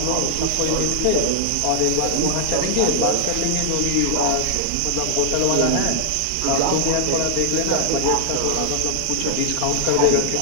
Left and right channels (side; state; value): both; different; correlation -0.01